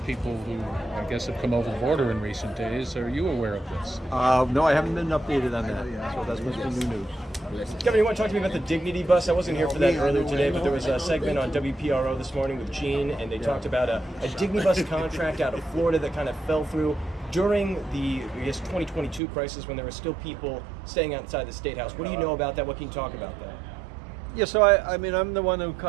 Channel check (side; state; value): left; drops out; at 19.2 s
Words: people who I guess have come over the border in recent days. Are you aware of this? No, I haven't been updated on that, so that's supposed to be new news. Kevin, you want to talk to me about the Dignity Bus? I wasn't here for that earlier today, but there was a segment on WPRO this morning with Gene, and they talked about a Dignity Bus contract out of Florida that kind of fell through during the, 2022 crisis when there were still people staying outside the State House. What do you know about that? What can you talk about that? Yeah, so I'm the one who